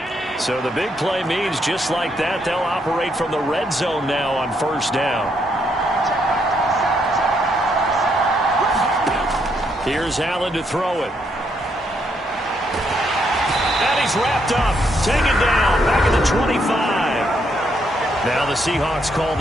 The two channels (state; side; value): normal; both; correlation 0.75